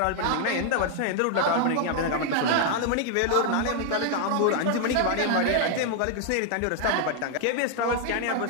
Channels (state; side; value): different; both; correlation 0.00